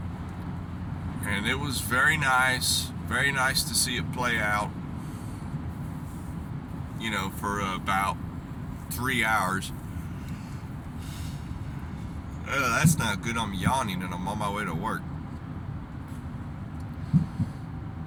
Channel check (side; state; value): both; identical; correlation 1.00